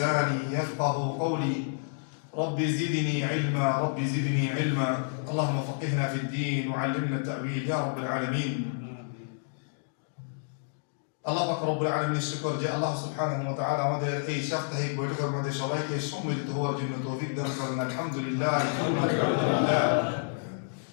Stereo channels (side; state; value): right; silent; digital silence